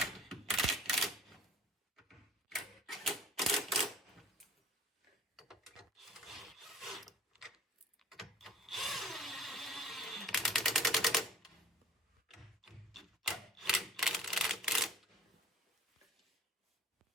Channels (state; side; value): normal; both; correlation 0.46